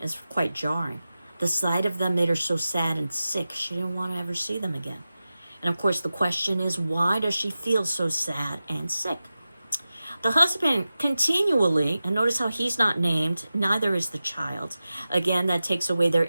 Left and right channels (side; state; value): both; inverted; correlation -0.94